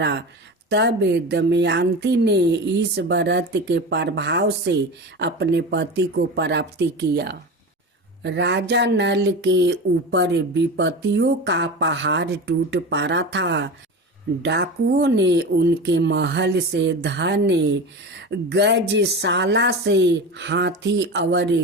तब दमयंती ने इस व्रत के प्रभाव से अपने पति को प्राप्त किया। राजा नल के ऊपर विपत्तियों का पहाड़ टूट पड़ा था। डाकुओं ने उनके महल से धन, गजशाला से हाथी और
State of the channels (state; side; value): normal; both; correlation 0.27